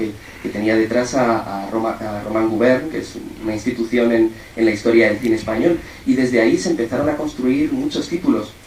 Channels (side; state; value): both; identical; correlation 1.00